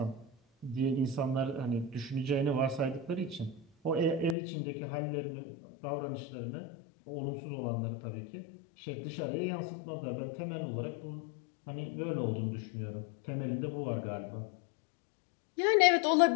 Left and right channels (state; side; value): drops out; right; at 4.4 s